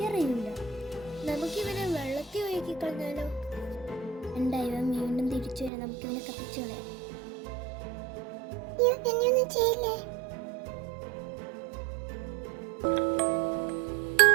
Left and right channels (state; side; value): drops out; left; at 5.7 s